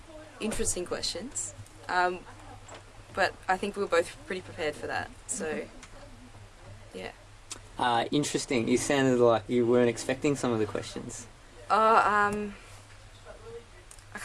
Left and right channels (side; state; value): both; identical; correlation 1.00